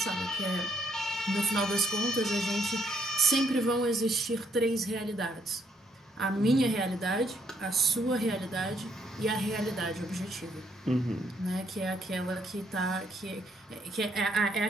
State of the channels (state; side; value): normal; both; correlation 0.72